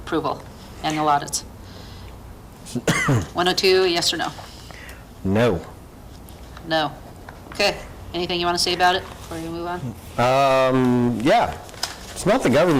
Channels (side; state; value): both; identical; correlation 1.00